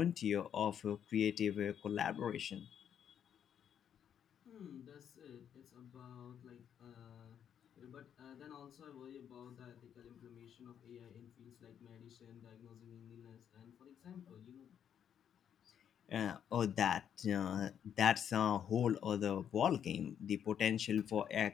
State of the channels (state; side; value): quieter; right; 8.9 dB